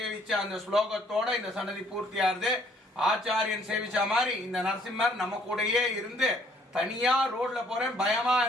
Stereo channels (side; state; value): both; normal; correlation 0.63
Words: அந்த ஸ்லோகத்தோட இந்த சன்னதி பூர்த்தியாருது. ஆச்சாரியன் சேவிச்ச மாதிரி இந்த நரசிம்மர் நம்ம கூடயே இருந்து தனியா ரோட்ல போறேன் பயமா